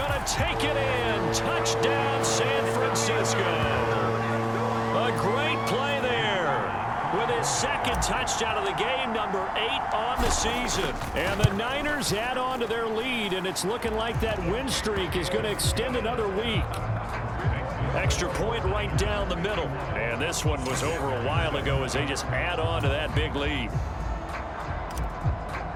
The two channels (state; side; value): identical; both; correlation 1.00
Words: to take it in. Touchdown, San Francisco. A great play there with his 2nd touchdown of the game, number 8 on the season. And the Niners add on to their lead, and it's looking like that win streak is going to extend another week. Extra point right down the middle. And this one was over a while ago as they just add on to that big lead.